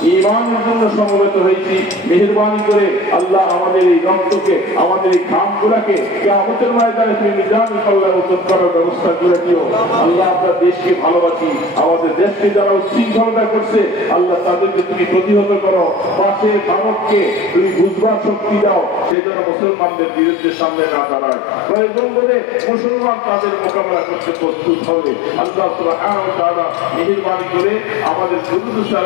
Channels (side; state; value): right; drops out; at 19.2 s